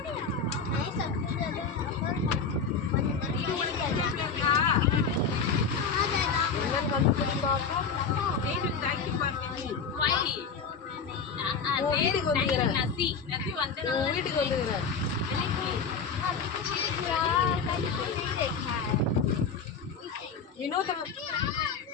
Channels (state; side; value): quieter; right; 5.5 dB